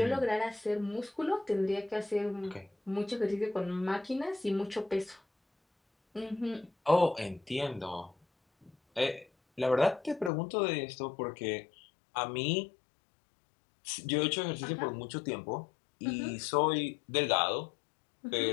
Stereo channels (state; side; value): drops out; right; at 10.3 s